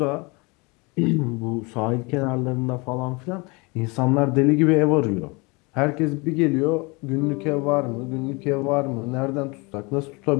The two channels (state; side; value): quieter; right; 27.8 dB